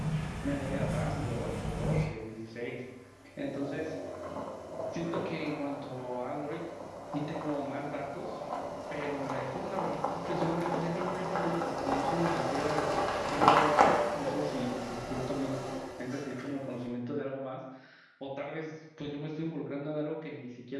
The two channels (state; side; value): identical; both; correlation 1.00